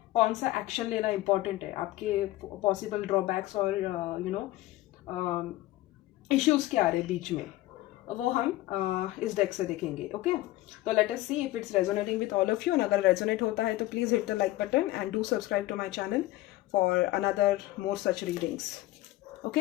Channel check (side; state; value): right; quieter; 17.0 dB